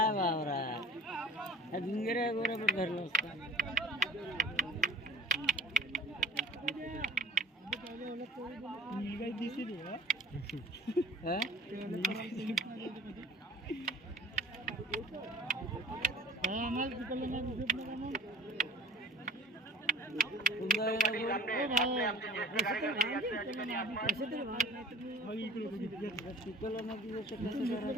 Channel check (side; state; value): both; normal; correlation 0.47